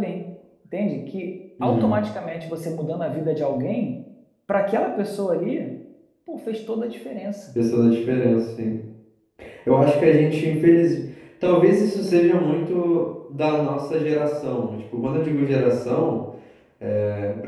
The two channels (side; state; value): both; identical; correlation 1.00